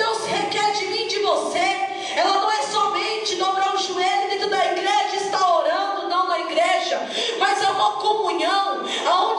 requer de mim e de você, ela não é somente dobrar o joelho dentro da igreja e estar orando, não na igreja, mas é uma comunhão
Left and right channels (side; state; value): both; identical; correlation 1.00